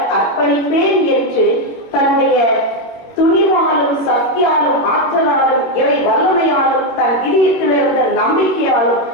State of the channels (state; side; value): late; right; 21 ms